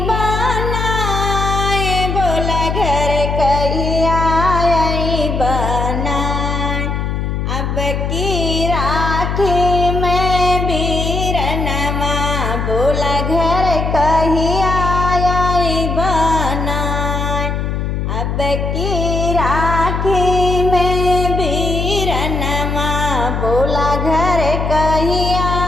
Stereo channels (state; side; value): noise; left; hum, 1 dB below the sound